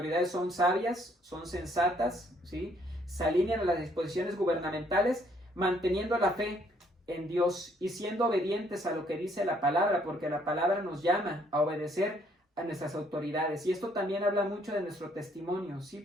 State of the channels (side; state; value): both; normal; correlation 0.66